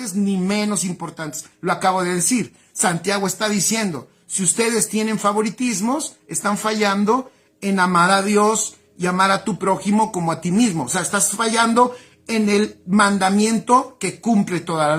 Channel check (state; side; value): identical; both; correlation 1.00